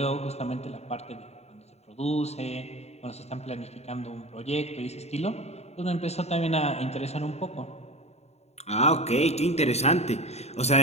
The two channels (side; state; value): right; late; 0.31 ms